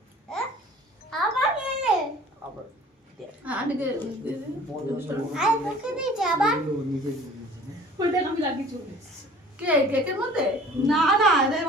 কেকের মধ্যে না না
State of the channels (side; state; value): both; normal; correlation 0.48